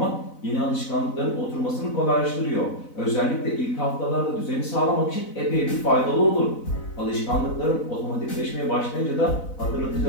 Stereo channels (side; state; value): right; late; 4.0 ms